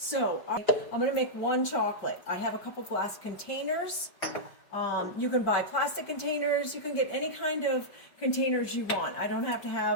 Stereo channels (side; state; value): right; late; 5.2 ms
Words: I'm going to make one chocolate. I have a couple glass containers. You can buy plastic containers. You can get any kind of containers you want. I don't have to